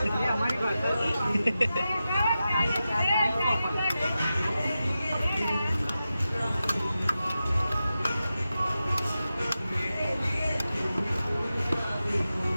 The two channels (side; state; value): both; inverted; correlation -0.92